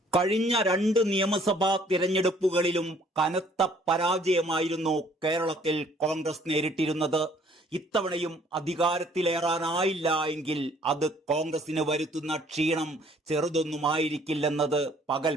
കഴിഞ്ഞ 2 നിയമസഭാ തിരഞ്ഞെടുപ്പുകളിലും കനത്ത പരാജയമായിരുന്നു കേരളത്തിൽ കോൺഗ്രസ് നേരിട്ടിരുന്നത്. ഇത്തവണയും അധികാരത്തിലേറാനായില്ല എങ്കിൽ അത് കോൺഗ്രസിന് വരുത്തുന്ന ക്ഷീണം ചെറുതൊന്നുമായിരിക്കില്ലെന്നത് പകൽ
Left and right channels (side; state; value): both; normal; correlation 0.59